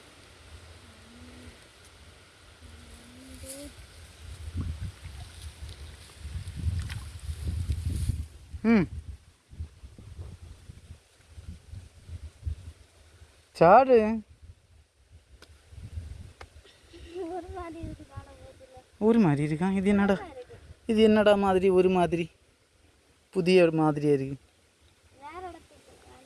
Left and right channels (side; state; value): both; identical; correlation 1.00